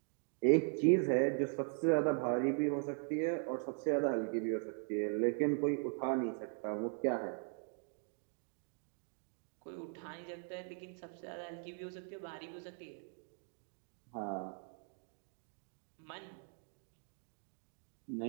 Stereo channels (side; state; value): left; silent; 51 dB below the other